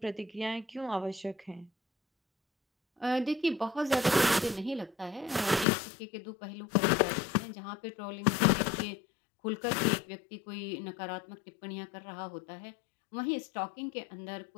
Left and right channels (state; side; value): drops out; right; at 5.7 s